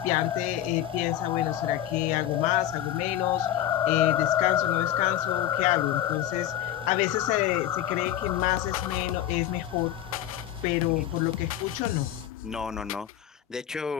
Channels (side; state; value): right; quieter; 12.0 dB